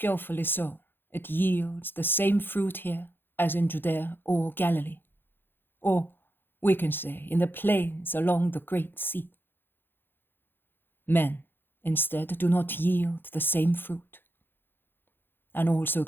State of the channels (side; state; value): right; late; 0.10 ms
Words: sown, it yields the same fruit here as in Judea or Galilee, or we can say in the plains along the great sea. Men, instead, do not yield the same fruit. And also